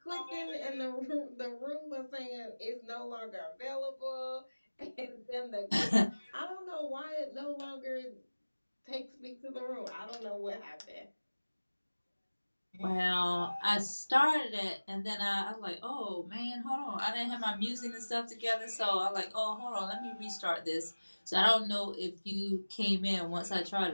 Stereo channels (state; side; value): inverted; both; correlation -1.00